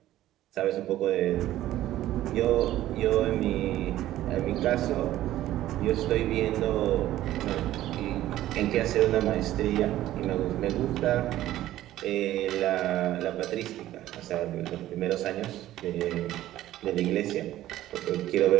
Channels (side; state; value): left; quieter; 14.1 dB